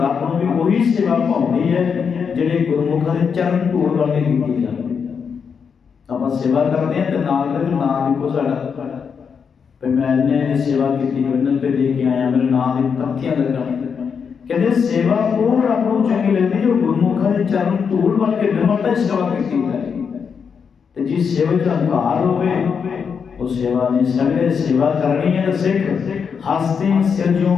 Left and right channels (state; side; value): quieter; right; 6.4 dB